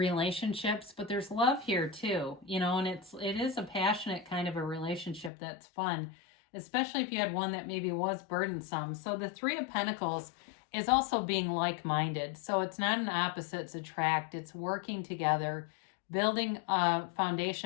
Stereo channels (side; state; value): right; drops out; at 5.3 s